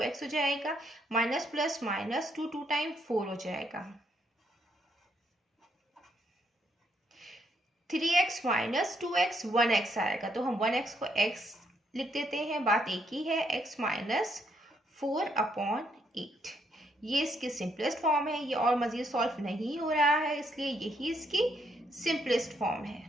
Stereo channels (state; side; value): normal; both; correlation 0.74